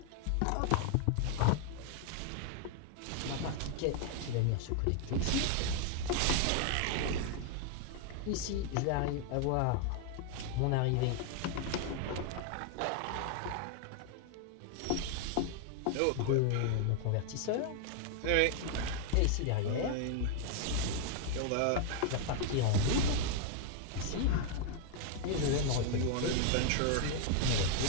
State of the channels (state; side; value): different; both; correlation 0.00